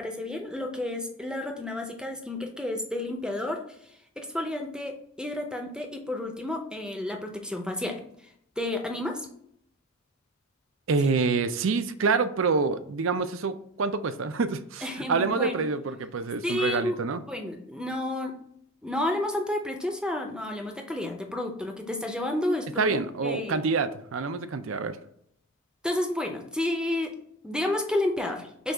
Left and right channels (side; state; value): both; normal; correlation 0.32